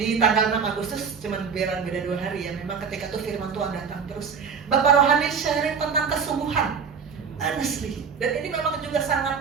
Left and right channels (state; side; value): quieter; left; 6.1 dB